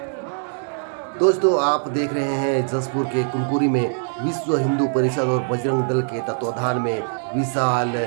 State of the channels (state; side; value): silent; left; 64 dB below the other